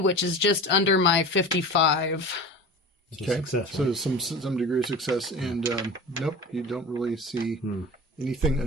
is just under my 55. So Okay. success, So right? some degree of success, and nope, you don't really see anything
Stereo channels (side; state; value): both; normal; correlation 0.34